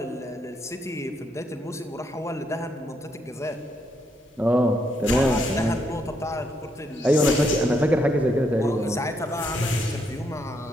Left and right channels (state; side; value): normal; both; correlation 0.76